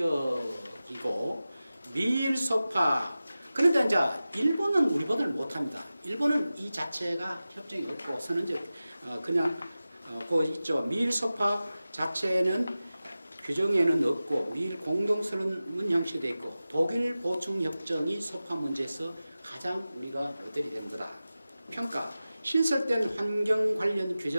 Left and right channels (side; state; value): both; inverted; correlation -0.95